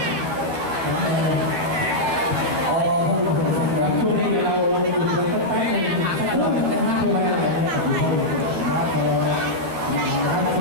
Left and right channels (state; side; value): late; left; 12 ms